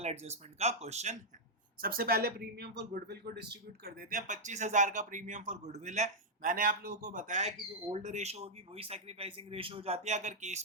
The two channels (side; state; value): both; normal; correlation -0.05